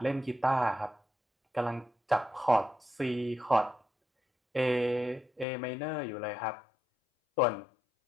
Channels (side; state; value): right; drops out; at 5.5 s